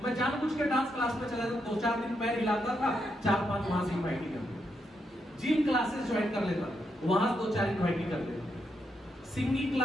मैं जानबूझ के डांस क्लास में चला जाता, 2-4 दिन पैर हिलाता था, 4-5 वहां से इनवाइट कर। जिम क्लासेस ज्वाइन कर लेता, वहां 2-4 इनवाइट कर लेता। सिंगिंग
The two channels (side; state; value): both; normal; correlation 0.81